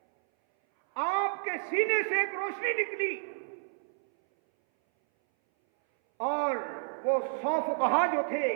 آپ کے سینے سے ایک روشنی نکلی، اور وہ 100 فقہا جو تھے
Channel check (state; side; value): silent; left; 58 dB below the other